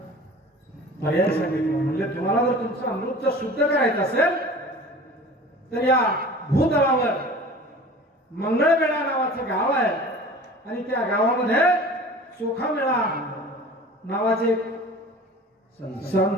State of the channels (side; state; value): both; normal; correlation 0.41